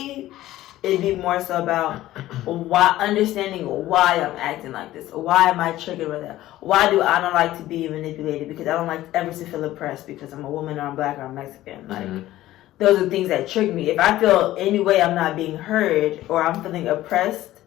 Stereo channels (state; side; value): quieter; right; 15.1 dB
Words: it'd be more so about understanding why I'm acting like this. Why am I triggered with that? Why do I don't like to be manipulated? Because I don't like ever to feel oppressed because I'm a woman or I'm black or I'm Mexican. Like, those are things that trigger me. If I feel any way I'm not being heard or I'm feeling oppressed,